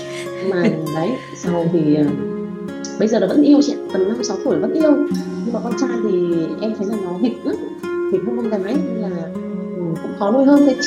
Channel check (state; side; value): identical; both; correlation 1.00